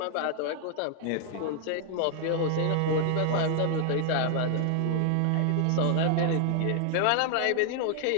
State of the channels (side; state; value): both; different; correlation 0.00